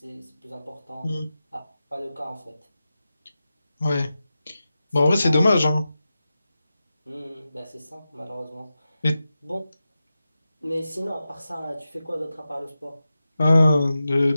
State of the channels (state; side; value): inverted; both; correlation -0.92